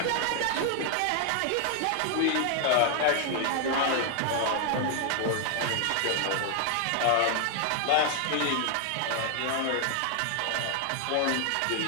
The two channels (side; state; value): both; different; correlation 0.00